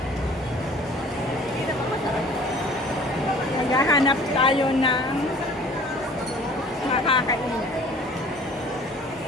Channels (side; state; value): both; normal; correlation 0.49